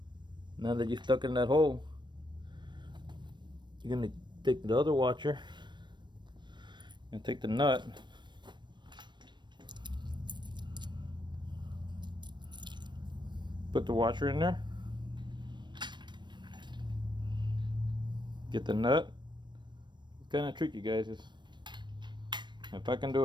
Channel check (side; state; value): left; late; 0.22 ms